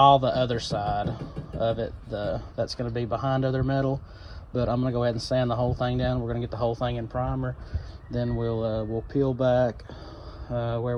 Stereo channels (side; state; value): both; identical; correlation 1.00